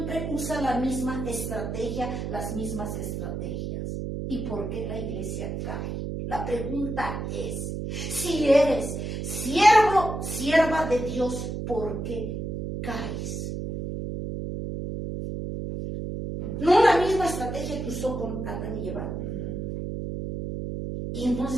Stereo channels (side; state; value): right; noise; hum, 4 dB below the sound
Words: usa la misma estrategia, las mismas estrategias. ¿Y por qué la iglesia cae? La pregunta es, si eres siervo, sierva de Dios, ¿por qué caes? No la misma estrategia que usó con Adán y Eva. Y